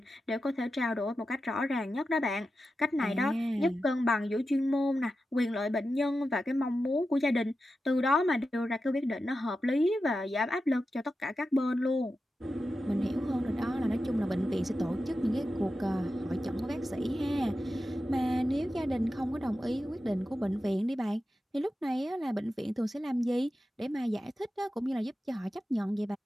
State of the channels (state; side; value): normal; both; correlation 0.91